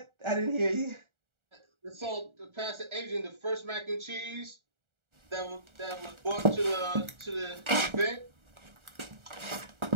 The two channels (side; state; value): left; late; 1.4 ms